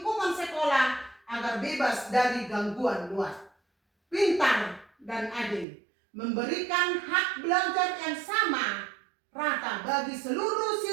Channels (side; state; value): left; drops out; at 5.7 s